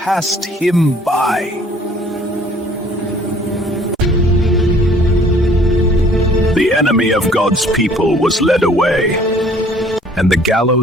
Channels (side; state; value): both; normal; correlation 0.55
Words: him by. The enemy of God's people was led away, and the